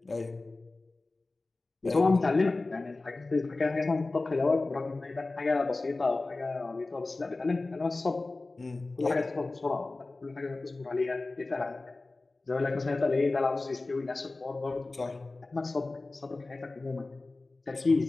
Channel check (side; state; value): right; quieter; 3.3 dB